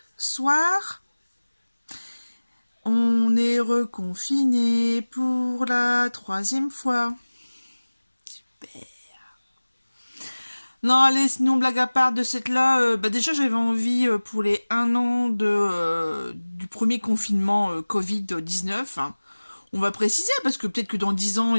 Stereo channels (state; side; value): inverted; both; correlation -1.00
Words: soir. On est reconfiné pour la 3e fois. Super. Non, allez, sinon, blague à part de cette là, déjà j'avais envie pour les 1 an du premier confinement Covid-19. Hein. On va préciser, parce que peut-être que dans 10 ans,